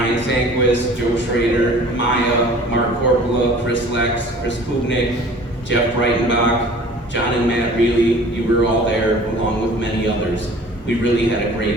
Sanquist, Joe Schrader, Maya, Mark Corpola, Chris Lex, Chris Kubnik, Jeff Breitenbach, John and Matt Reilly, you were all there along with many others. We really had a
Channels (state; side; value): normal; both; correlation 0.47